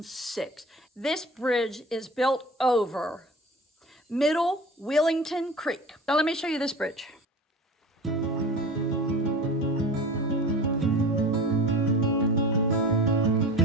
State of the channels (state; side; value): normal; both; correlation 0.36